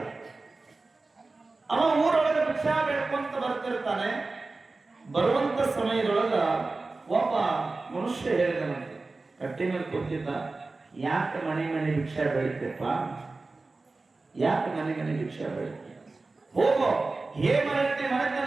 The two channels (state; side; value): quieter; left; 3.5 dB